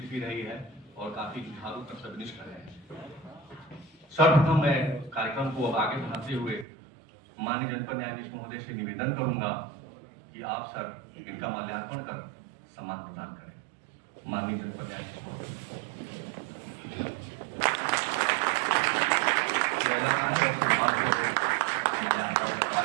भी रही है और काफी जुझारू कर्तव्यनिष्ठ रहे हैं। सर्वप्रथम मैं कार्यक्रम को अब आगे बढ़ाते हुए माननीय जनपद न्यायाधीश महोदय से निवेदन करूंगा कि आप सर इनका माल्यार्पण कर सम्मान प्रदान करें। माननीय जनपद न्यायाधीश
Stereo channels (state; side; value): drops out; left; at 6.7 s